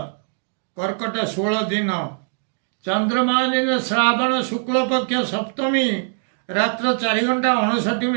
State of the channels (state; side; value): silent; left; 55 dB below the other